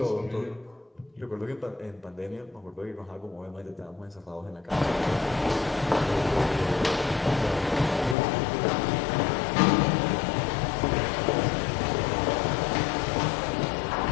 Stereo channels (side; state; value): right; drops out; at 8.2 s